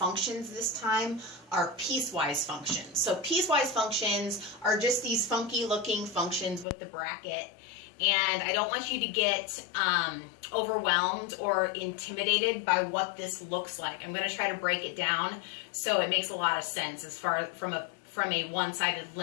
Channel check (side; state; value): right; drops out; at 6.7 s